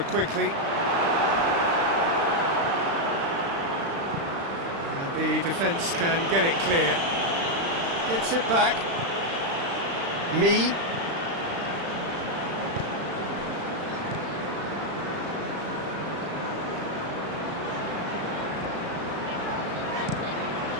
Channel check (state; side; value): late; left; 35 ms